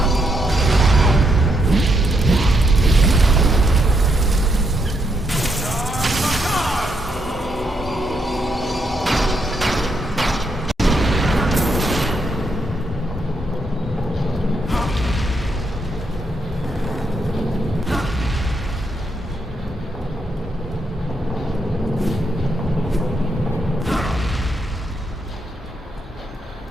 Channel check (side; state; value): both; normal; correlation 0.78